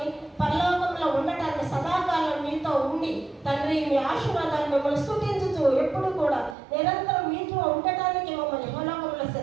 పరలోకంలో ఉండటానికి సదాకాలం మీతో ఉండి తండ్రి మీ ఆశీర్వాదాలు మిమ్మల్ని స్తుతించుతూ ఎప్పుడు కూడా నిరంతరం మీతో ఉండటానికి మమ్మల్ని ఇహలోకంలో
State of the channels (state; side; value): drops out; left; at 6.6 s